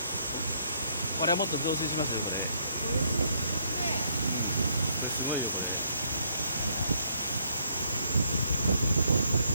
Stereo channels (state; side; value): inverted; both; correlation -0.70